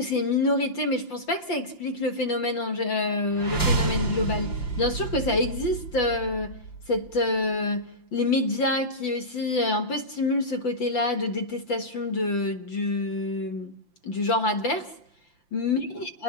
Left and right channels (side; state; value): right; late; 5.8 ms